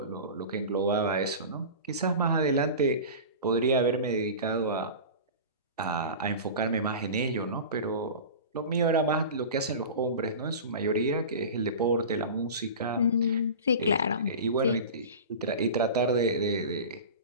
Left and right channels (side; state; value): both; inverted; correlation -0.32